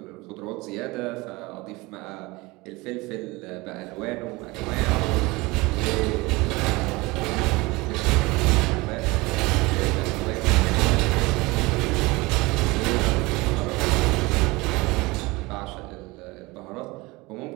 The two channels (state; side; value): quieter; left; 22.9 dB